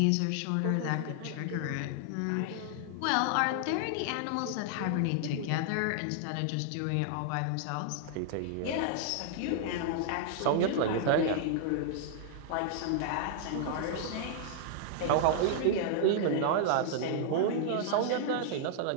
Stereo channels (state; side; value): different; both; correlation -0.01